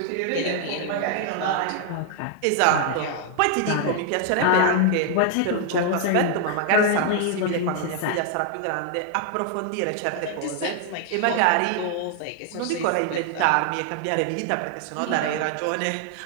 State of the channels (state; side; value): different; both; correlation 0.00